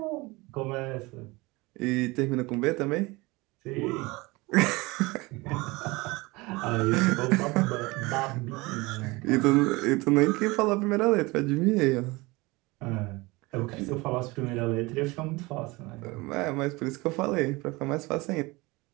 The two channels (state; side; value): quieter; left; 23.2 dB